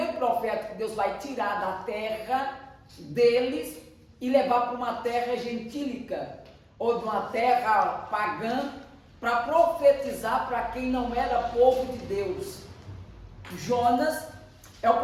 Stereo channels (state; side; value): identical; both; correlation 1.00